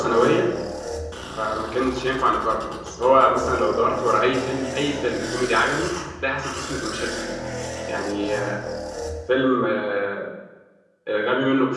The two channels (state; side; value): identical; both; correlation 1.00